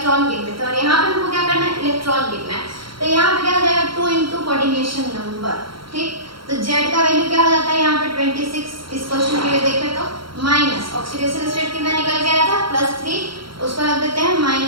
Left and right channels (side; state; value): left; late; 0.73 ms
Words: गिनते थे। और यहाँ पे हमको क्या करना है, इलेक्ट्रॉन गिनना है। तो यहाँ पे क्या हो जाएगा, 2 इंटू कोऑर्डिनेशन नंबर। ठीक, तो Z का वैल्यू क्या हो जाता है यहाँ पे 26। इस क्वेश्चन के लिए देखें तो माइनस ऑक्सीडेशन स्टेट कितना निकल के आया था, +3, उसको रख देते हैं